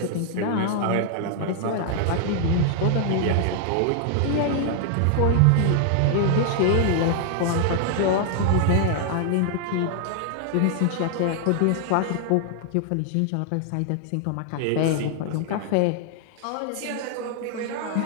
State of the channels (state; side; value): different; both; correlation 0.00